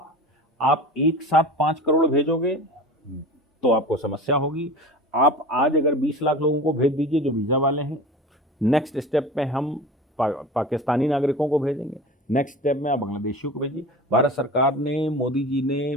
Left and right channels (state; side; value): normal; both; correlation 0.35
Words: आप एक साथ 5 करोड़ भेजोगे तो आपको समस्या होगी। आप आज अगर 20 लाख लोगों को भेज दीजिए जो वीजा वाले हैं, नेक्स्ट स्टेप में हम पाकिस्तानी नागरिकों को भेजेंगे, नेक्स्ट स्टेप में आप बांग्लादेशियों को भेजिए। भारत सरकार ने, मोदी जी